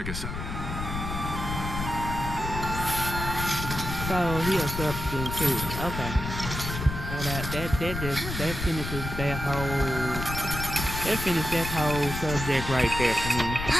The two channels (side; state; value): left; noise; rumble, 5 dB below the sound